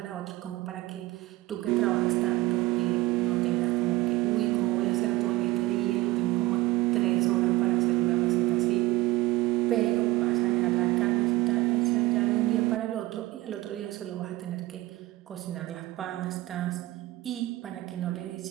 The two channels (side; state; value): left; quieter; 18.6 dB